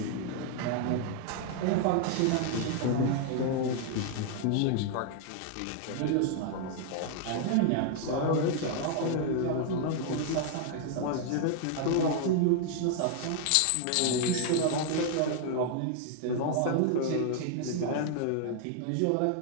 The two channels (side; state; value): both; different; correlation 0.00